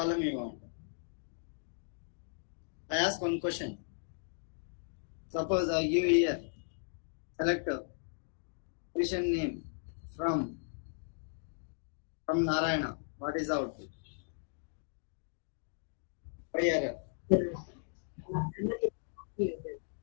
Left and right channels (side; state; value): right; silent; digital silence